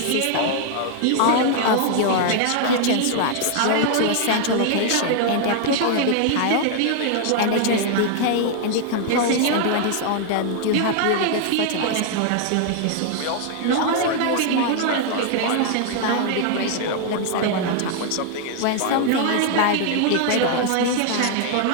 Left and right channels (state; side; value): different; both; correlation 0.00